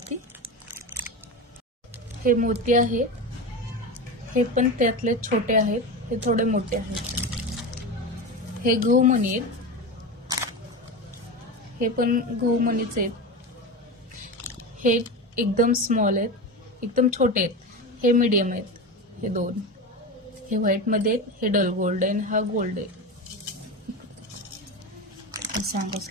हे मोती आहेत, हे पण त्यातले छोटे आहेत, हे थोडे मोठे आहेत। हे गहूमणी आहेत, हे पण गहूमणीचे आहेत। हे एकदम स्मॉल आहेत, एकदम छोटे आहेत, हे मीडियम आहेत। हे दोन हे व्हाईट मध्ये आहेत, हे डल गोल्ड आहे, हा गोल्ड आहे, सांगावंच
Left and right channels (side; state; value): both; normal; correlation 0.22